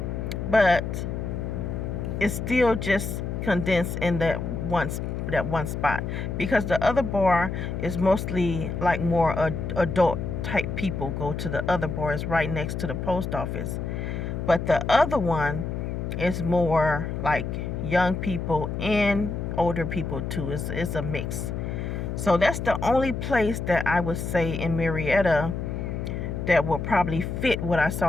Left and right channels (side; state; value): left; noise; hum, 4 dB below the sound